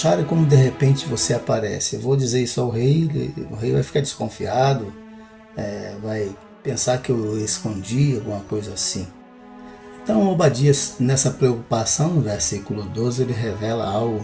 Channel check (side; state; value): both; identical; correlation 1.00